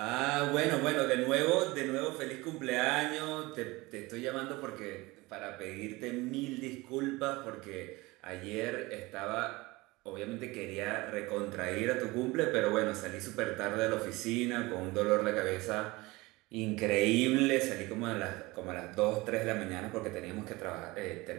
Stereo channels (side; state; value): left; quieter; 21.9 dB